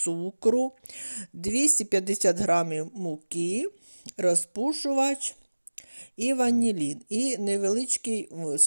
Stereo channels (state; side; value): inverted; both; correlation -1.00